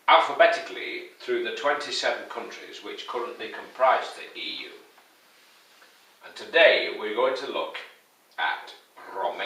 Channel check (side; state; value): both; identical; correlation 1.00